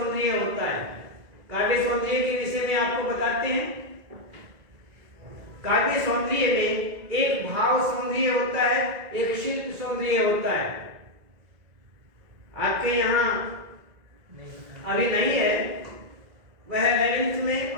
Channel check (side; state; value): left; late; 2.0 ms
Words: होता है। काव्य सौंदर्य के विषय में आपको बताते हैं। काव्य सौंदर्य में एक भाव सौंदर्य होता है, एक शिल्प सौंदर्य होता है। आपके यहाँ अभी नहीं है, वह 11th में